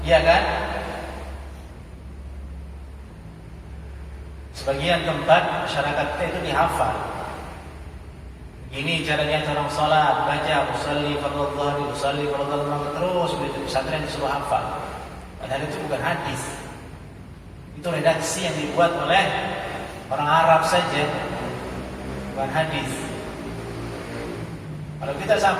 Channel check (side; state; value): both; identical; correlation 1.00